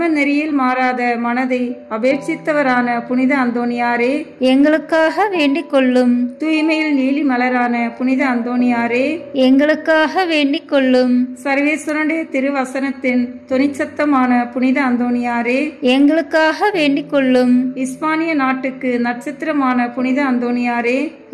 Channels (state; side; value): identical; both; correlation 1.00